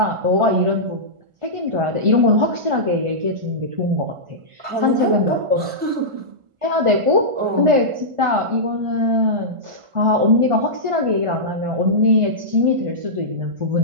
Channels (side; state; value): left; late; 1.4 ms